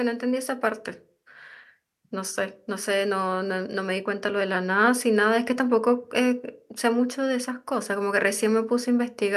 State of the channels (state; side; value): identical; both; correlation 1.00